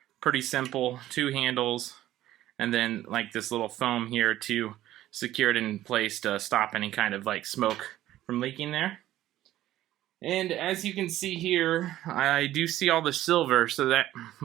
Pretty simple, 2 handles. And then like this little foam here to secure it in place to stop any kind of like smoke from leaking there. And as you can see here, I do see all the silver, so that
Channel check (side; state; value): left; quieter; 14.0 dB